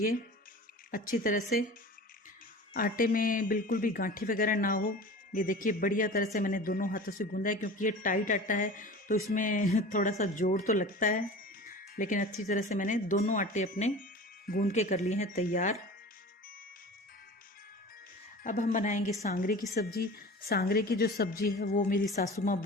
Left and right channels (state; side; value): normal; both; correlation 0.37